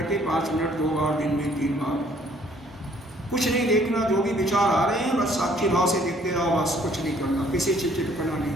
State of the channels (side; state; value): both; normal; correlation 0.61